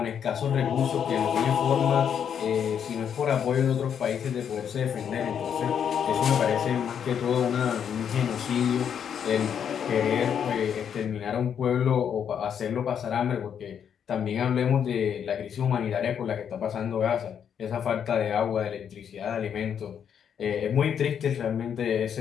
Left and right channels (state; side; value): quieter; right; 8.2 dB